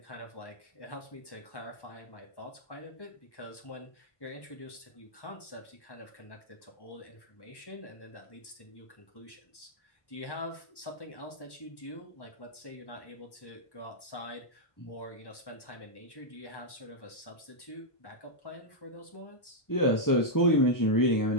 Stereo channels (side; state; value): right; late; 1.1 ms